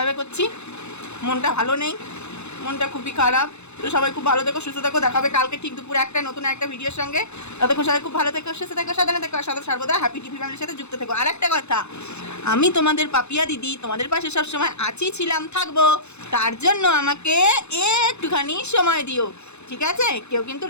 করছি। মনটা ভালো নেই, মনটা খুবই খারাপ। তো সবাই খুব ভালো থেকো, সুস্থ থেকো, দেখাবে কালকে ঠিক দুপুরে একটা নতুন একটা ভিডিওর সঙ্গে। ততক্ষণ সবাই খুব ভালো থেকো, সুস্থ থেকো, সাবধানে থেকো, আর সর্বদা হ্যাপি টিভি ফ্যামিলির সাথে যুক্ত থেকো। আর একটা কথা, আমি তোমাদের পাপিয়া দিদি তোমাদের পাশে সবসময় আছি, ছিলাম, থাকবো, তার জন্য আমাকে একটুখানি সময় দিও, ঠিক আছে? কেউ কিন্তু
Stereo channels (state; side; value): late; right; 0.81 ms